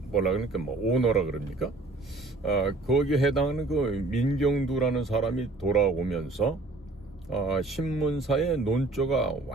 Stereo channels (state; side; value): quieter; left; 3.2 dB